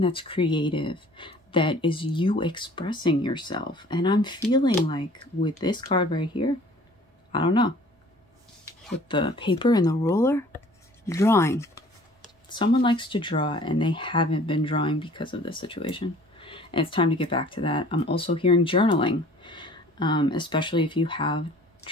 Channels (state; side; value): normal; both; correlation 0.51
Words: creative, that is you expressing yourself. And I'm feeling like with this card right here, I don't know, with the paper and the ruler, drawing. Someone likes to draw and they haven't been drawing because of this situation. And it's time to get back to that. I'm also hearing journaling, especially if you have